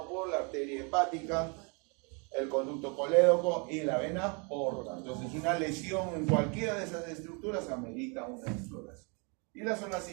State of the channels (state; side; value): quieter; left; 34.0 dB